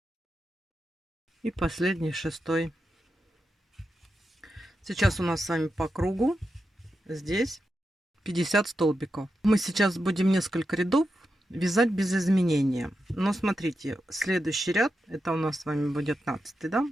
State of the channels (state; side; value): normal; both; correlation 0.88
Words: И последний, 6. Сейчас у нас с вами по кругу здесь 50 столбиков. Мы сейчас будем несколько рядов вязать без изменения. Но смотрите, следующий ряд, это у нас с вами будет 15, да?